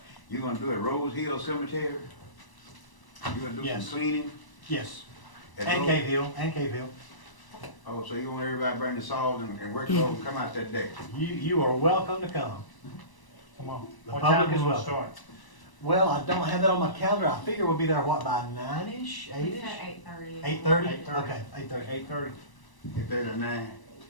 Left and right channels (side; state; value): right; late; 1.0 ms